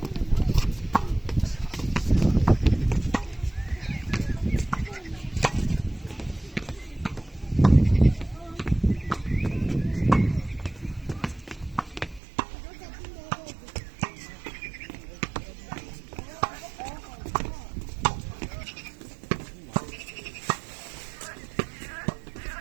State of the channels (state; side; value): drops out; left; at 12.2 s